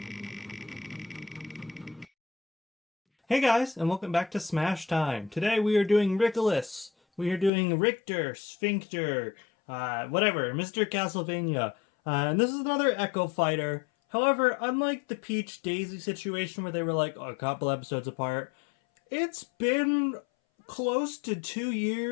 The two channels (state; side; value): drops out; right; at 7.5 s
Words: guys, and welcome back to Smash Time. Today we are doing Rickolas. We are doing Richter, Sphincter, whatever, Mr. Castlevania. And this is another Echo Fighter. However, unlike the Peach Daisy situation where they were like a couple episodes apart, it's been close to 2